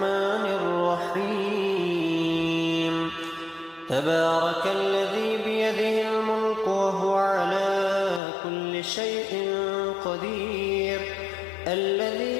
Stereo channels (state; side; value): drops out; right; at 8.2 s